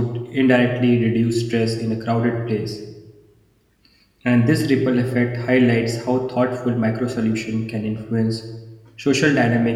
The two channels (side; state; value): both; identical; correlation 1.00